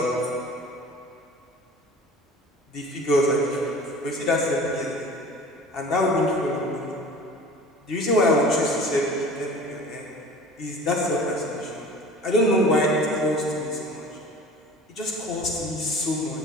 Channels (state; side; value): normal; both; correlation 0.42